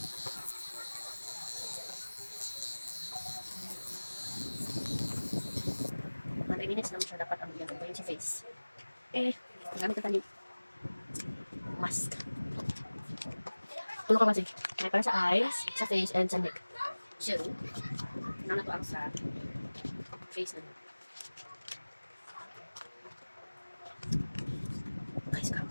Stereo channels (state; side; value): inverted; both; correlation -1.00